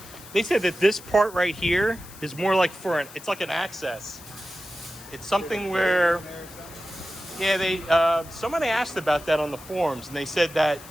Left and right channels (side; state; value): left; noise; hiss, 18 dB below the sound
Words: said that this part right here is more like it's like an access. It's something where, yeah, somebody asked about that on the forums, and they said that,